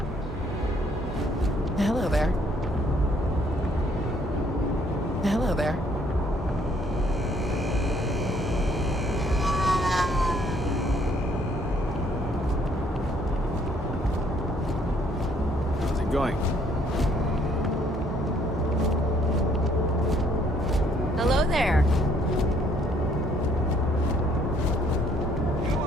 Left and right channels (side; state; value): both; normal; correlation 0.65